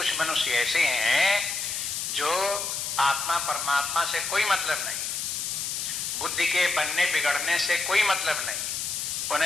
मनुष्य ऐसे हैं जो आत्मा परमात्मा से कोई मतलब नहीं, बुद्धि के बनने बिगड़ने से कोई मतलब नहीं,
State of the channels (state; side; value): noise; left; hiss, 3 dB below the sound